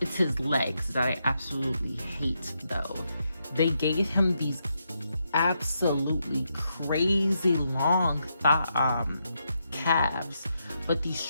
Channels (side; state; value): both; inverted; correlation -0.82